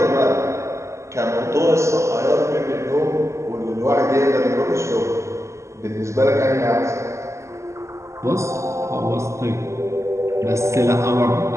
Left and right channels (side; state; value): left; late; 0.14 ms